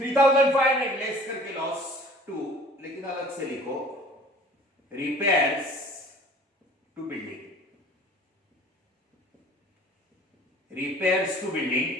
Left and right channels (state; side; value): normal; both; correlation 0.48